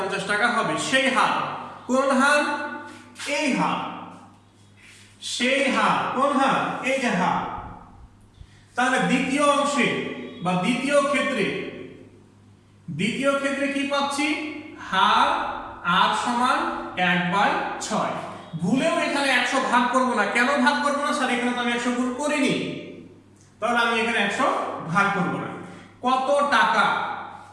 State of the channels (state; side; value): identical; both; correlation 1.00